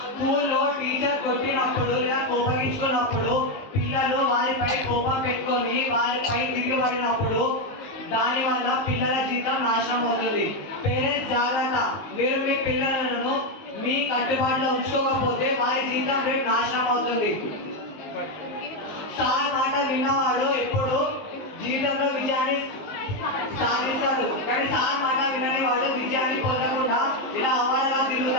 స్కూల్లో టీచర్ కొట్టినప్పుడు లేదా కోపగించుకున్నప్పుడు పిల్లలు వారిపై కోపం పెట్టుకొని వారిపై తిరిగిపడినప్పుడు దానివల్ల పిల్లల జీవితం నాశనం అవుతుంది. పేరెంట్స్ జాగ్రత్త. మీరు మీ పిల్లలను మీ కట్టుబాటులో ఉంచుకోకపోతే వారి జీవితం రేపు నాశనం అవుతుంది. సార్ మాట విన్నవాడు ఎప్పుడు జీవితంలో విజయాన్ని సాధిస్తాడు, కానీ సార్ మాట వినని వాడు విజయాన్ని పొందకుండా ఇలా అవార్డుగా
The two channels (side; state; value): right; late; 19 ms